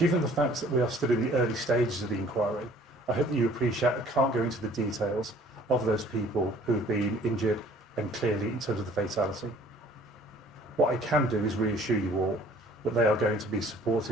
the fact that we are still in the early stages of the inquiry, I hope that you appreciate I can't go into the details of those people who have been injured and clearly in terms of the fatality. What I can do is reassure you all that they are going to be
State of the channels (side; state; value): both; normal; correlation 0.54